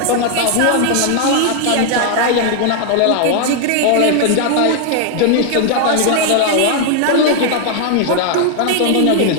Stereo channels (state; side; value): different; both; correlation 0.00